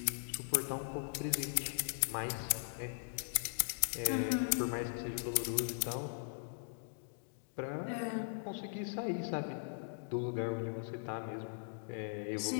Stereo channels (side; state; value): right; silent; digital silence